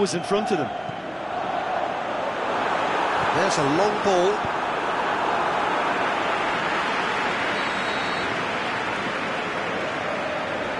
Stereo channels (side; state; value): both; identical; correlation 1.00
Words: in front of them. There's a long ball.